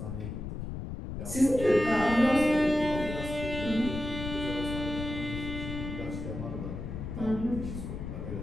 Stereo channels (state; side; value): noise; left; rumble, 6 dB below the sound